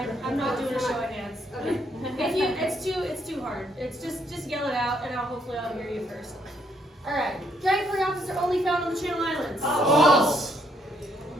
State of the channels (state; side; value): normal; both; correlation 0.71